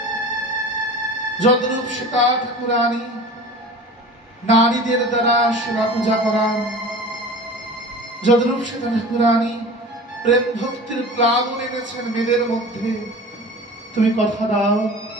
যদ্রূপ সীতা ঠাকুরানী নারীদের দ্বারা সেবা পূজা করান, যদ্রূপ সীতা ঠাকুরানী প্রেম ভক্তির প্লাবন এনেছেন মেয়েদের মধ্যে, তুমি কথা দাও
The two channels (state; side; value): normal; both; correlation 0.38